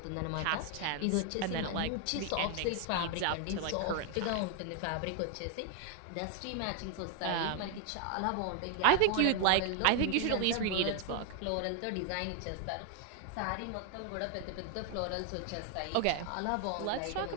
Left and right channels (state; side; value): different; both; correlation 0.00